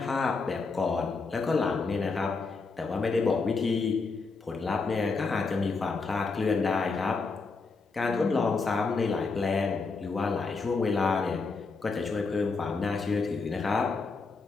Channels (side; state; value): right; quieter; 4.3 dB